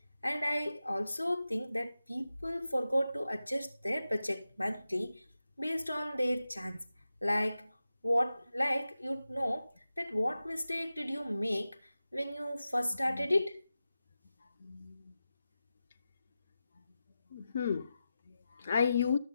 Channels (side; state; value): both; inverted; correlation -0.92